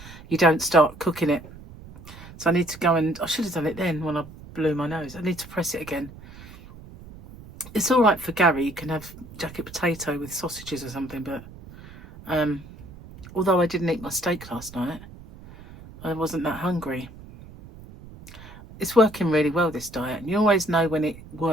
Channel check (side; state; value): right; noise; rumble, 18 dB below the sound